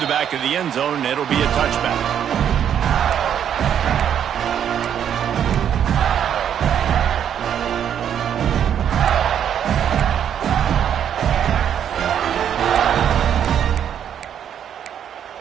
the back of the end zone, and it'll be a touchback.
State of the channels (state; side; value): quieter; left; 9.2 dB